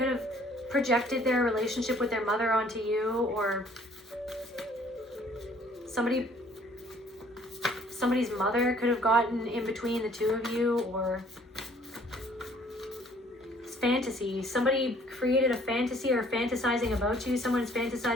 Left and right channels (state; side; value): normal; both; correlation 0.58